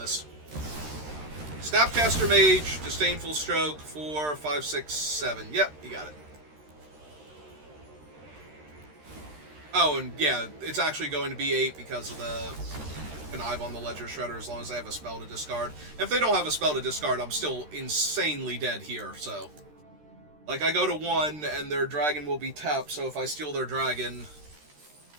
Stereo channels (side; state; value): left; late; 13 ms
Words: Snapcaster Mage, Disdainful Stroke, 4, 5, 6, 7. Yep, you got it. Oh, and yeah, it's actually going to be 8 because of the Connive on the Ledger Shredder as long as they have a spell to discard. If they don't have a spell to discard, I'm still insanely dead here, so... Like, I go to 1, and their dragon will be tapped, so if I steal their dragon...